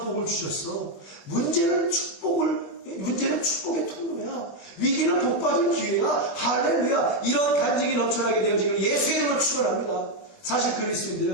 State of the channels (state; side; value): late; right; 21 ms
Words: 복을 주셨어. 문제는 축복의 통로야. 위기는 복받을 기회야. 할렐루야. 이런 간증이 넘쳐나게 되어지기를 예수의 이름으로 축원합니다. 사실